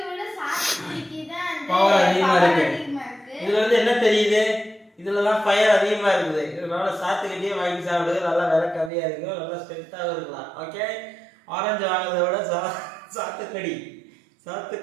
பவர் அதிகமாக இருக்கு. இதுல வந்து என்ன தெரியுது, இதுலதான் ஃபயர் அதிகமா இருக்குது. இதனால சாத்துக்கட்டியே வாங்கி சாப்பிடுறது நல்லா விலை கம்மியா இருக்கும், நல்லா ஸ்ட்ரென்த்தாகவும் இருக்கலாம். ஓகே, ஆரஞ்சு வாங்குறத விட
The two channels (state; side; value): drops out; left; at 8.9 s